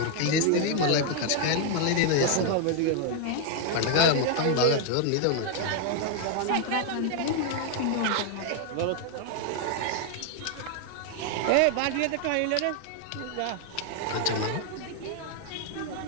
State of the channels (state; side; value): different; both; correlation 0.00